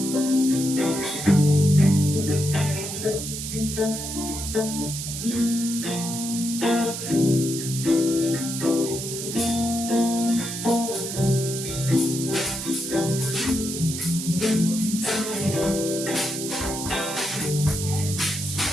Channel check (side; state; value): right; noise; hiss, 6 dB below the sound